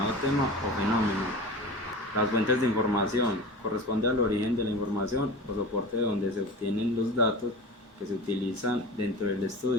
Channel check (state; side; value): normal; both; correlation 0.33